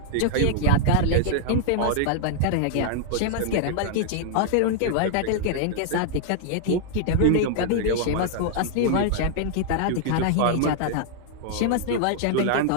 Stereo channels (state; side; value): different; both; correlation -0.01